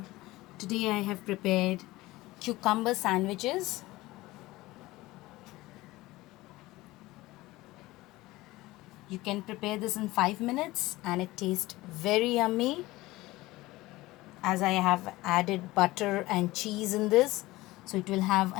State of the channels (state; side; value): quieter; right; 19.1 dB